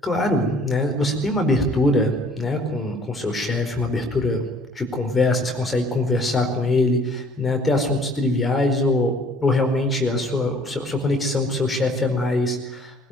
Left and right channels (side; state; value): both; normal; correlation 0.56